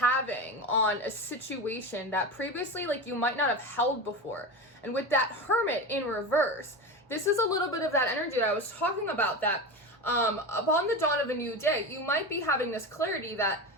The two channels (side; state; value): both; normal; correlation 0.23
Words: on a situation that previously you might not have held before. And with that Hermit in reverse, this is a little bit of that energy that I was talking about, that upon the dawn of a new day, you might be having this clarity that,